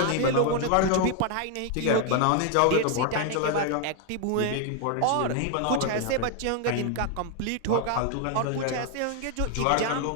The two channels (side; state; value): both; different; correlation 0.00